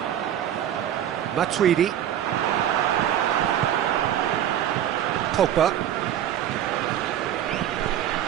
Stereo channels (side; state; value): left; quieter; 10.8 dB